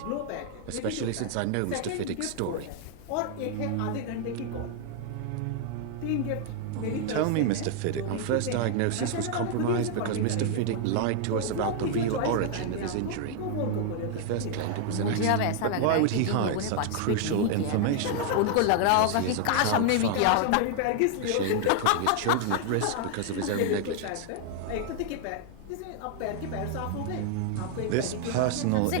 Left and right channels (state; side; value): different; both; correlation 0.00